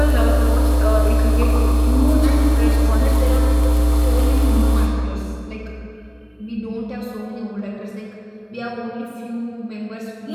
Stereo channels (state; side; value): identical; both; correlation 1.00